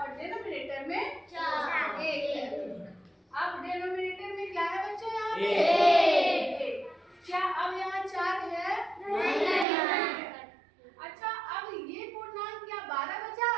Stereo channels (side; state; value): left; drops out; at 9.7 s